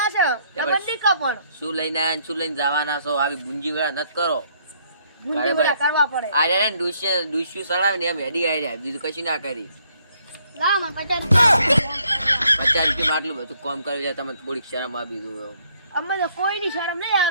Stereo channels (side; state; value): both; inverted; correlation -0.68